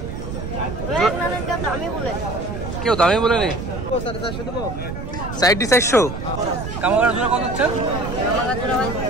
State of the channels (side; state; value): right; noise; rumble, 7 dB below the sound